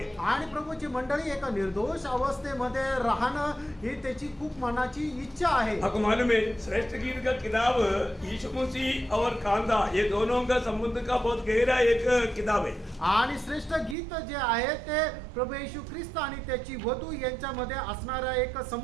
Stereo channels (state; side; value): drops out; left; at 14.0 s